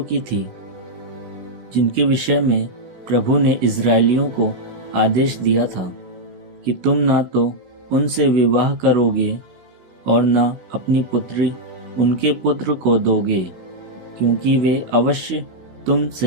की थी जिनके विषय में प्रभु ने इज़राइलियों को आदेश दिया था कि तुम ना तो उनसे विवाह करोगे और ना अपनी पुत्री उनके पुत्र को दोगे, क्योंकि वे अवश्य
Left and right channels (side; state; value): left; late; 16 ms